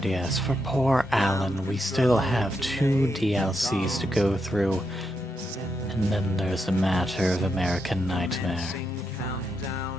yes, for poor Alan, we still have 2 DLCs to go through, and then there's a matter of American Nightmare.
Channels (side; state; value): both; normal; correlation 0.82